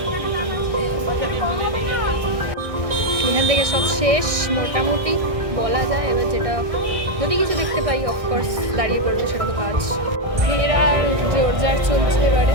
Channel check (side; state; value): left; late; 1.6 ms